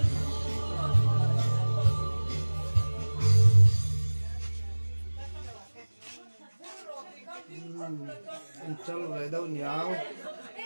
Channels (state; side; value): inverted; both; correlation -1.00